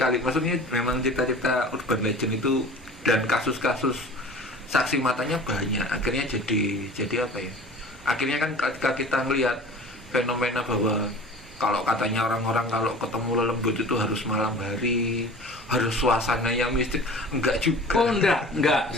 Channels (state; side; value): normal; both; correlation 0.41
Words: Maksudnya memang cita-cita urban legend itu dan kasus-kasus saksi matanya banyak. Akhirnya jadi apa ya? Akhirnya kan ketika kita melihat fenomena bahwa kalau katanya orang-orang kalau ketemu lelembut itu harus malam hari, harus suasana yang mistik, enggak juga. Oh enggak.